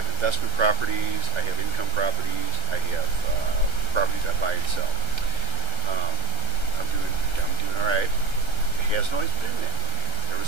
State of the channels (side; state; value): left; late; 1.3 ms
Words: investment properties. I have income properties. I have properties I buy and sell. I'm doing all right. It hasn't always been that way. There